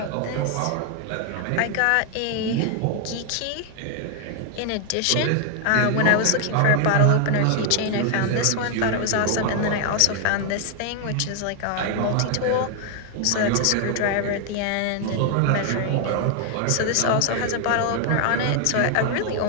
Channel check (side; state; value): both; different; correlation 0.00